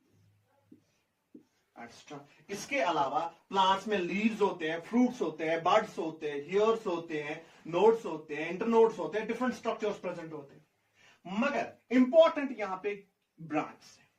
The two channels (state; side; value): identical; both; correlation 1.00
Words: extra. इसके अलावा प्लांट्स में लीव्स होते हैं, फ्रूट्स होते हैं, बड्स होते हैं, हेयर्स होते हैं, नोड्स होते हैं, इंटरनोड्स होते हैं, डिफरेंट स्ट्रक्चर्स प्रेजेंट होते हैं। मगर इंपॉर्टेंट यहां पे ब्रांच है।